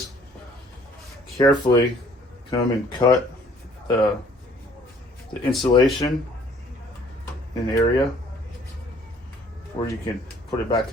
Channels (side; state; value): both; normal; correlation 0.58